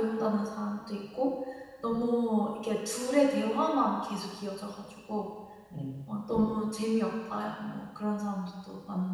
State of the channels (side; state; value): both; identical; correlation 1.00